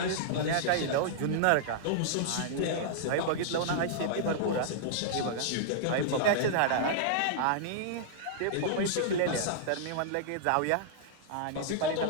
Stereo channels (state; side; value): different; both; correlation -0.01